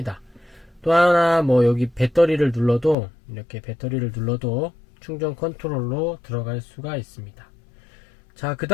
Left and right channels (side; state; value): right; drops out; at 3.0 s